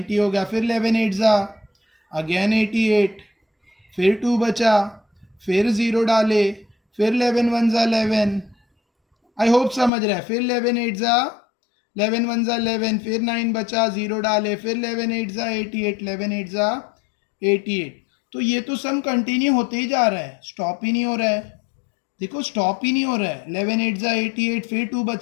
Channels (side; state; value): right; drops out; at 9.9 s